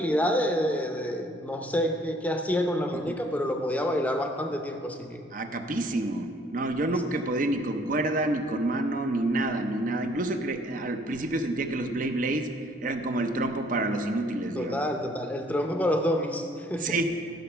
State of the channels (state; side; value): normal; both; correlation 0.61